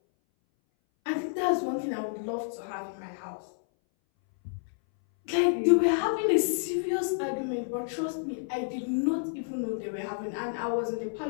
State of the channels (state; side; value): silent; right; 58 dB below the other